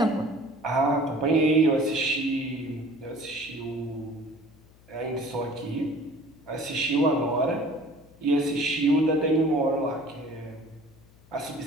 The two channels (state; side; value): noise; left; hum, 27 dB below the sound